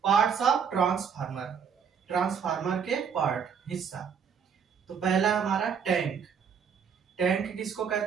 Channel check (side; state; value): left; quieter; 6.9 dB